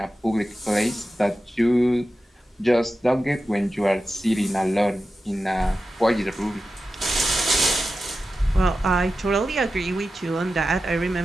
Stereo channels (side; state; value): both; normal; correlation 0.92